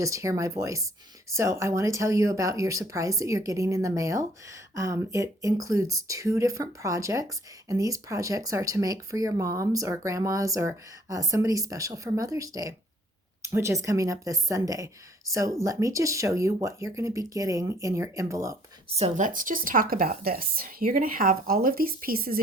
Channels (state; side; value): normal; both; correlation 0.60